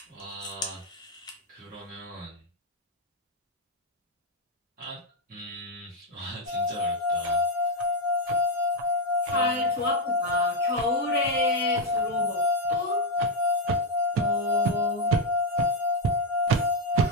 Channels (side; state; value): both; normal; correlation 0.02